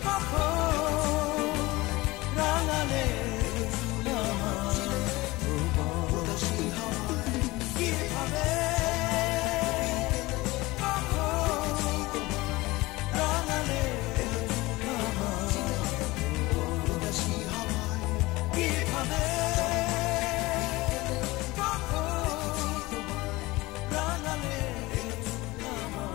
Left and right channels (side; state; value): right; quieter; 20.8 dB